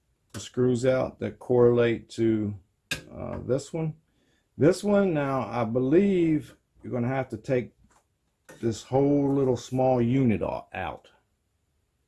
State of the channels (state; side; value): identical; both; correlation 1.00